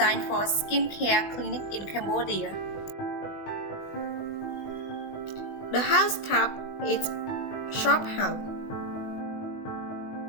for skincare clinic in Cambodia. The house type is shop house.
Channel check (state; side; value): late; right; 20 ms